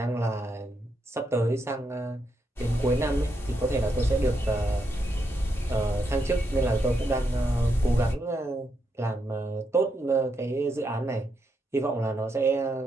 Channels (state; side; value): normal; both; correlation 0.81